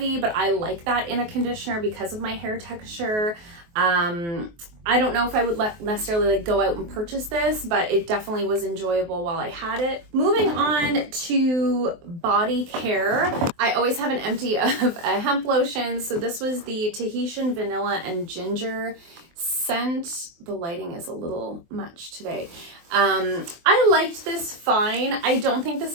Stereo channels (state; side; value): late; left; 23 ms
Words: but I like that in a conditioner because of my hair texture. I don't know if I would necessarily like go out and purchase this, but it definitely was enjoyable while I had it. Moving on to body care, I always have an empty of a hemp lotion. So this was the Tahitian Vanilla and Ginger scent. The lighting is a little much today. I liked this fine. I don't think